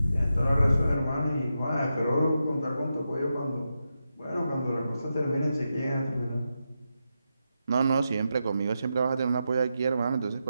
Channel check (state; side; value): inverted; both; correlation -0.87